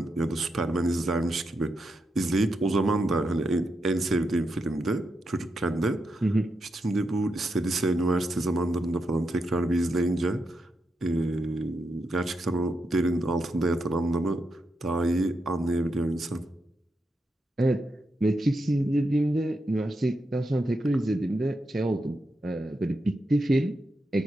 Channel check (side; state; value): both; normal; correlation 0.85